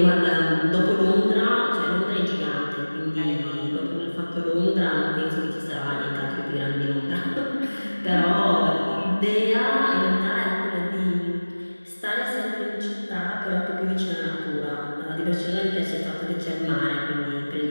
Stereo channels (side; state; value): both; inverted; correlation -1.00